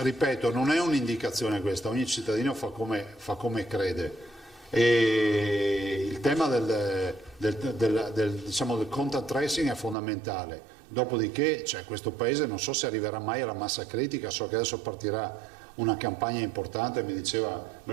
non è un'indicazione questa, ogni cittadino fa come crede. E il tema del contact tracing è fondamentale. Dopodiché questo paese non so se arriverà mai alla massa critica, so che adesso partirà una campagna importante, me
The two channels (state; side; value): drops out; left; at 10.0 s